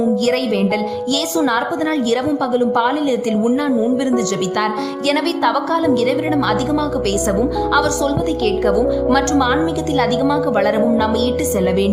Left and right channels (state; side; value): identical; both; correlation 1.00